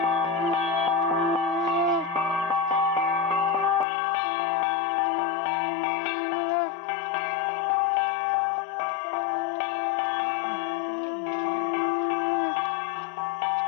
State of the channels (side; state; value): right; drops out; at 3.9 s